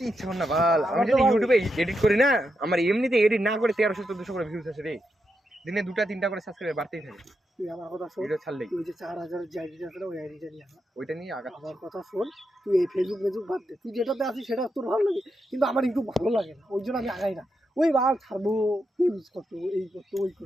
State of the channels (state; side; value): normal; both; correlation 0.85